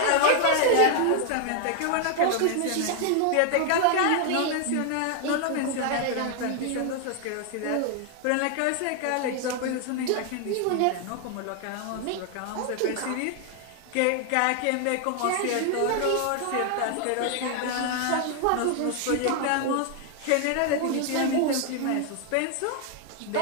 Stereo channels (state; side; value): different; both; correlation 0.00